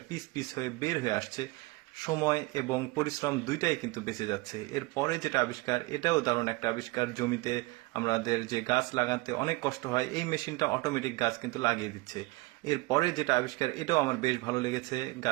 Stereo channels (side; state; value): left; quieter; 22.4 dB